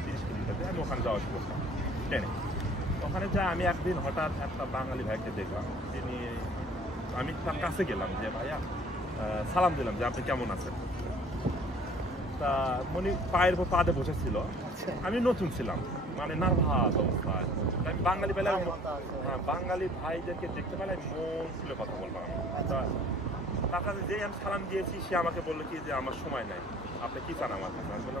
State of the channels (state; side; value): normal; both; correlation 0.53